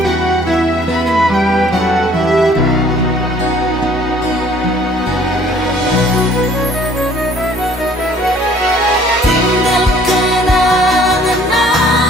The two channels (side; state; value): both; normal; correlation 0.57